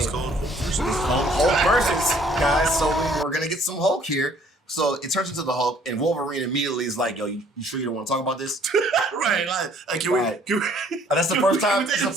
called Hulk versus, guys. So we're gonna get some Hulk here. So it turns into the Hulk, and Wolverine immediately is like, "Yo, you sure you don't want to talk about this?" Right? Can we? That's the first time. It's the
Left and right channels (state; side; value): normal; both; correlation 0.59